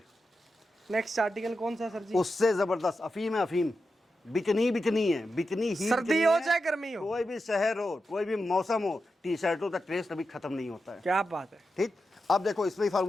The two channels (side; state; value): both; normal; correlation 0.89